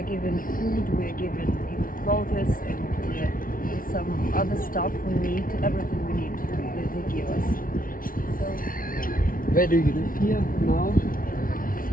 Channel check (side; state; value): right; late; 0.41 ms